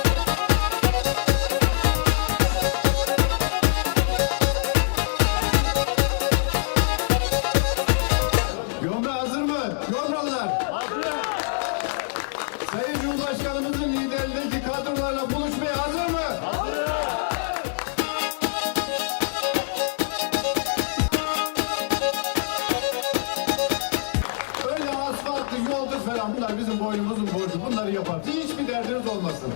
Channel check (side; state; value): right; silent; 62 dB below the other